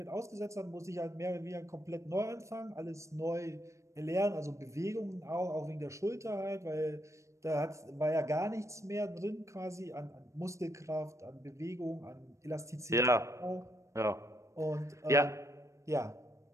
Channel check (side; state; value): left; late; 0.15 ms